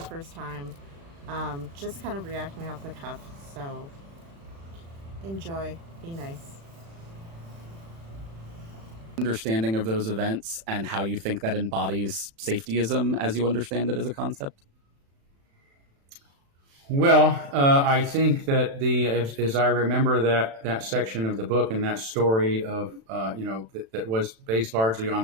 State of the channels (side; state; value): left; late; 36 ms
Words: first time, just kind of reacting off the cuff, so enjoy, be nice. Understanding of those events and how you think that embodies safetyism as you understand it as a concept? Well, I think that as I remember that section of the book and that story of, that was based largely on